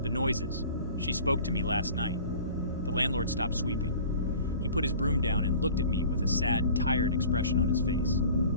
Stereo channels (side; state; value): both; inverted; correlation -0.44